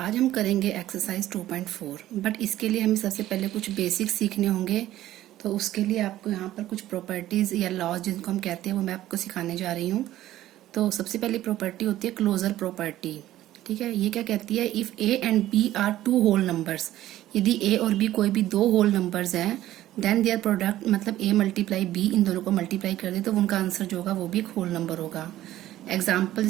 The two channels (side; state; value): left; quieter; 14.1 dB